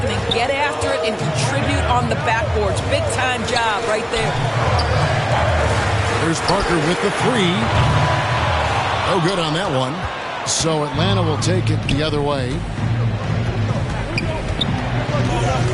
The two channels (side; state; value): both; identical; correlation 1.00